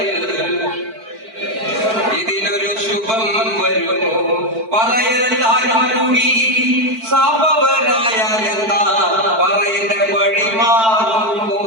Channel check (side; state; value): left; late; 4.5 ms